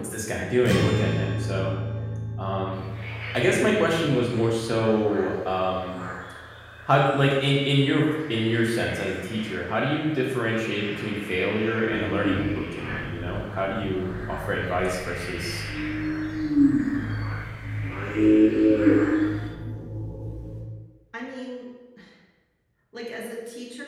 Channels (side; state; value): both; identical; correlation 1.00